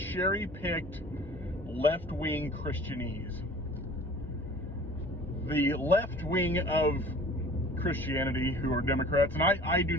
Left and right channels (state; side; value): noise; left; hum, 15 dB below the sound